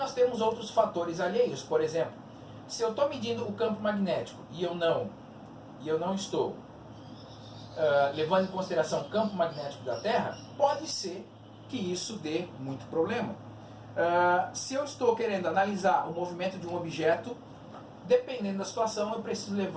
temos outros fatores alheios. Por exemplo, se eu estou medindo o campo magnético e eu não estou levando em consideração o campo magnético da Terra, pode ser que isso dê muito problema. Se eu estou querendo analisar o movimento de um objeto, dependendo da situação, eu preciso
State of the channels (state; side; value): identical; both; correlation 1.00